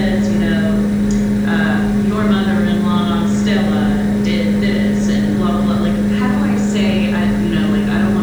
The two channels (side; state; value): left; noise; hiss, 30 dB below the sound